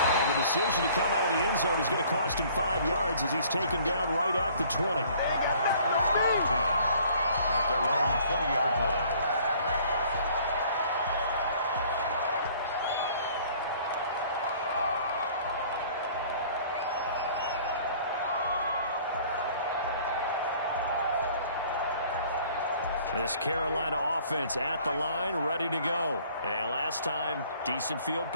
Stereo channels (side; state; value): both; inverted; correlation -0.55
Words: And the decision to come out of the end zone is going to cost him 5 yards as he's taken down right at the 20. First down 10 at their own 20-yard line. This Carolina offense at the line, ready to go. And last time, decent field